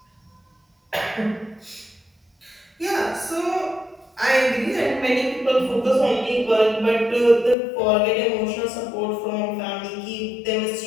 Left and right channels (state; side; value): drops out; right; at 7.6 s